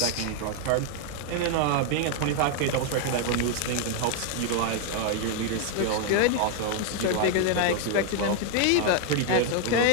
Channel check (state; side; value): different; both; correlation 0.00